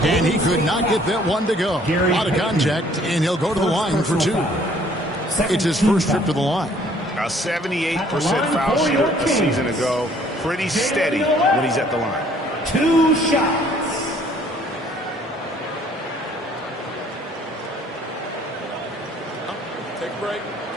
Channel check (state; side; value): normal; both; correlation 0.59